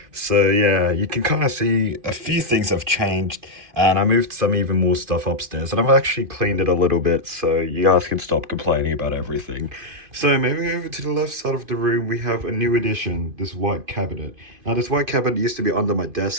so yeah, you can kind of see a few things have changed, and I moved some even more stuff upstairs, and I've actually cleaned it a little bit, so you guys can stop complaining about everything. So moving over to the left side of the room, we have a new addition, this white cabinet. Now, this white cabinet used to be under my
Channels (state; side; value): late; left; 2.5 ms